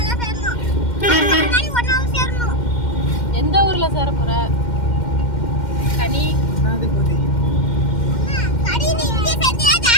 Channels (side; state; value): right; late; 2.1 ms